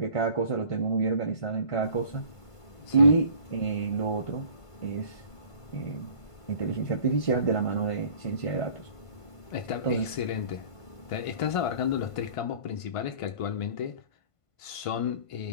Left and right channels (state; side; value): late; right; 1.5 ms